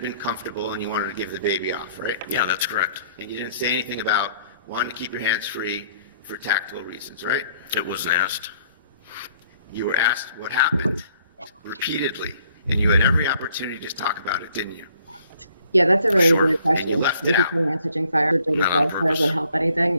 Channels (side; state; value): both; inverted; correlation -0.63